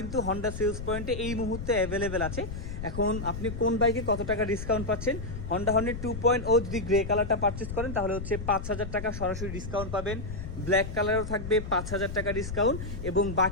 হন্ডা সেলস পয়েন্টে এই মুহূর্তে অ্যাভেলেবেল আছে। এখন আপনি কোন বাইকে কত টাকা ডিসকাউন্ট পাচ্ছেন? হন্ডা হর্নেট 2.0 যদি গ্রে কালারটা পারচেস করেন তাহলে হচ্ছে 5,000 টাকা সরাসরি ডিসকাউন্ট পাবেন। ব্ল্যাক কালারও থাকবে 5,000 টাকা ডিসকাউন্ট, এবং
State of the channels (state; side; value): noise; left; rumble, 7 dB below the sound